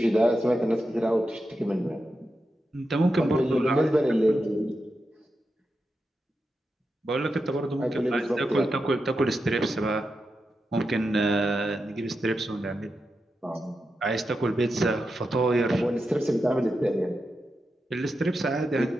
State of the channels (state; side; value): normal; both; correlation 0.88